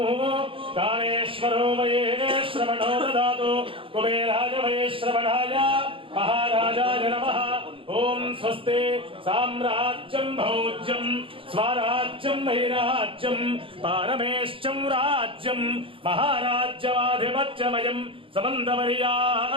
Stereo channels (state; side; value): late; left; 0.26 ms